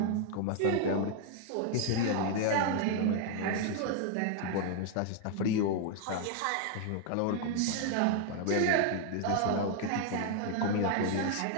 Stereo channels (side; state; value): both; different; correlation 0.00